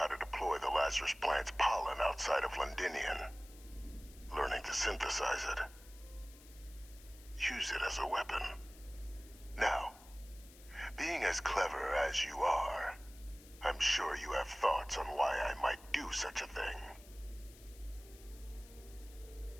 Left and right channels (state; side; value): noise; left; hiss, 21 dB below the sound